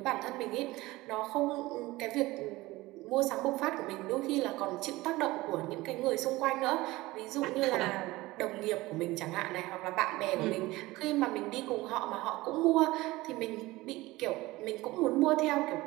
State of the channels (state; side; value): quieter; left; 19.5 dB